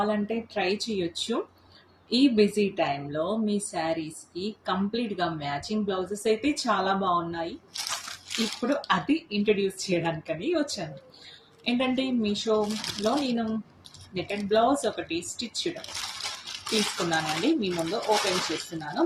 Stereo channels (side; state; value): both; identical; correlation 1.00